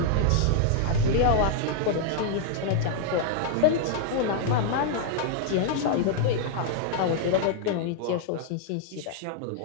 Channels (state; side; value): different; both; correlation -0.01